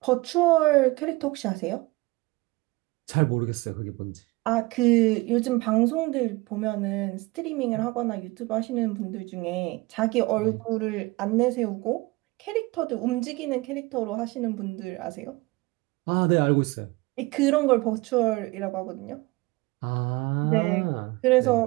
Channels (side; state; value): left; quieter; 22.3 dB